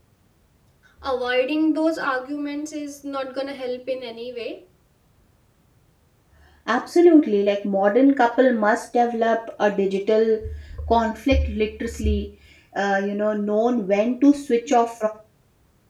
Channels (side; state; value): both; identical; correlation 1.00